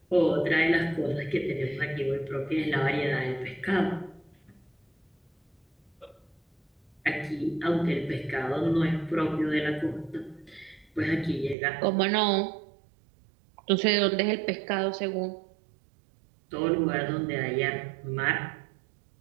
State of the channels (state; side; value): drops out; left; at 11.6 s